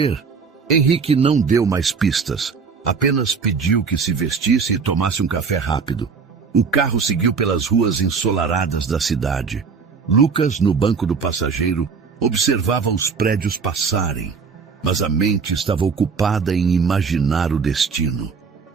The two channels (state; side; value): quieter; left; 5.5 dB